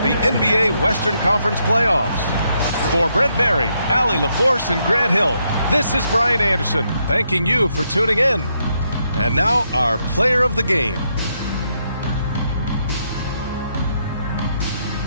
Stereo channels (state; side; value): inverted; both; correlation -0.78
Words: the NBA Western Conference playoffs. For Brent Barry, Allie LaForce, and Grant Hill, this is Brian Anderson, thanking you for tuning in. And now, our player of the game.